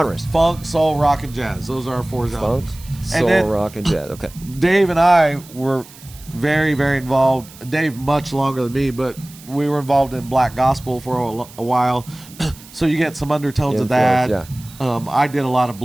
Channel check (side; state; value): right; noise; hiss, 21 dB below the sound